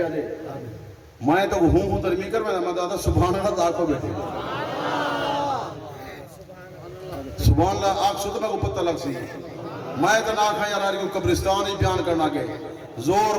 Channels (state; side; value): identical; both; correlation 1.00